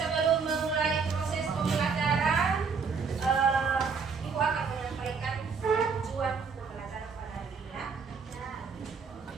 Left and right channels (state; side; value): quieter; left; 5.4 dB